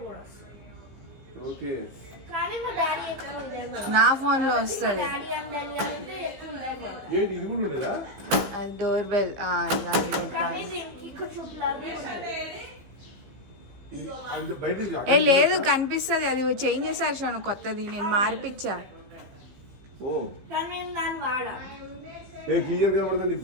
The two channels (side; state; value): left; late; 15 ms